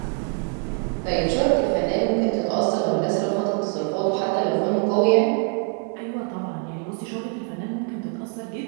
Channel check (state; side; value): quieter; left; 38.0 dB